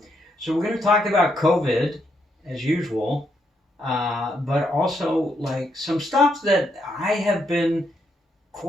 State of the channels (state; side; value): normal; both; correlation 0.77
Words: So we're going to talk about COVID as usual, but also like some stuff that I have been